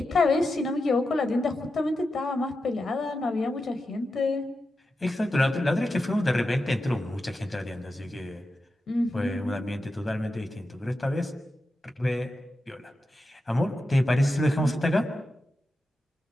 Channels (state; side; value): normal; both; correlation 0.90